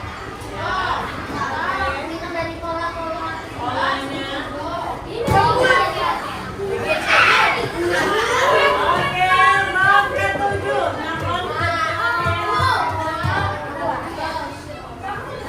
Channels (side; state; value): both; identical; correlation 1.00